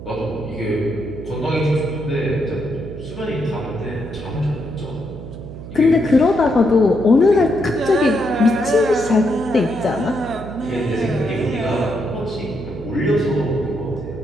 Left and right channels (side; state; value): right; noise; hum, 12 dB below the sound